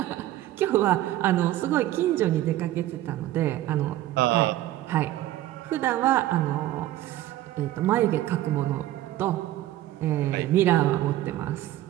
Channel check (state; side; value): quieter; left; 14.5 dB